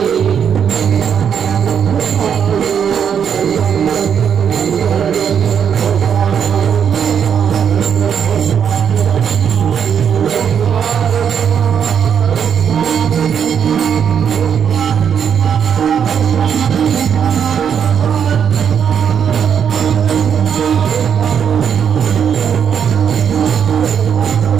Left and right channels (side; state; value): left; quieter; 7.8 dB